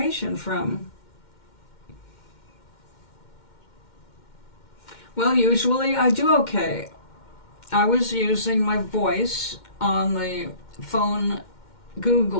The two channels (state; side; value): late; right; 2.1 ms